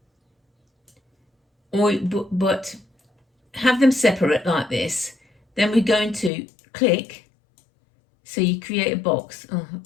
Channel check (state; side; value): drops out; right; at 6.3 s